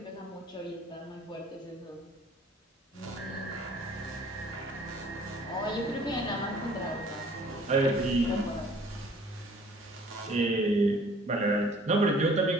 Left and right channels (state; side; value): normal; both; correlation 0.53